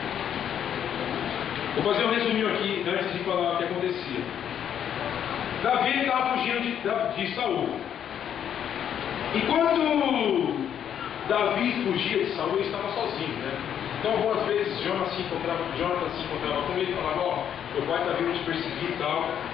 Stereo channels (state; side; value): quieter; right; 9.2 dB